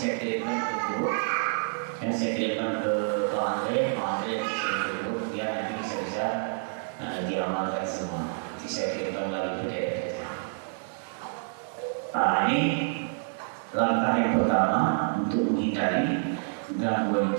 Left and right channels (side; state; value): left; silent; digital silence